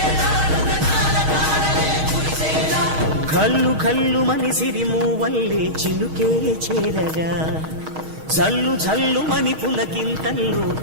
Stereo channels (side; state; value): left; late; 6.4 ms